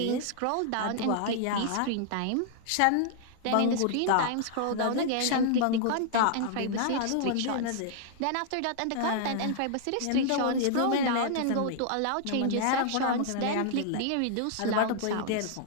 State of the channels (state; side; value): different; both; correlation -0.01